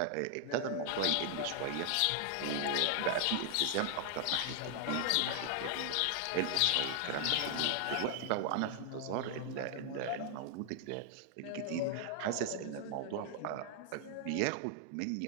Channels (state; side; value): different; both; correlation 0.00